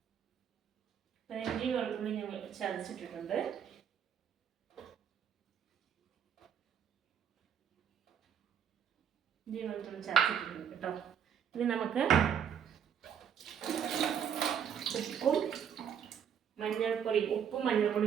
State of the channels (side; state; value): left; quieter; 8.3 dB